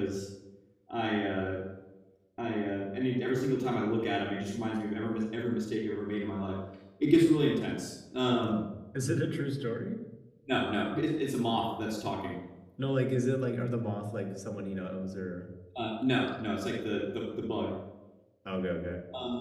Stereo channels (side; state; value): both; identical; correlation 1.00